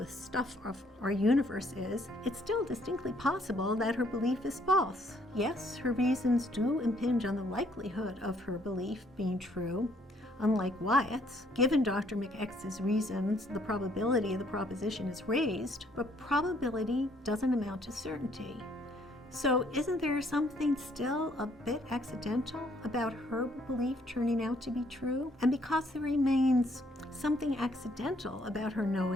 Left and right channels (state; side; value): normal; both; correlation 0.66